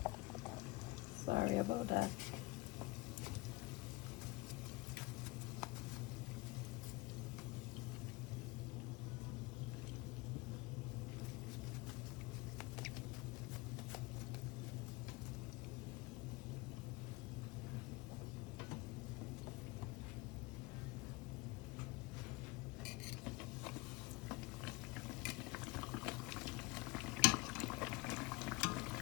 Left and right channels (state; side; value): quieter; right; 22.5 dB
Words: Sorry about that.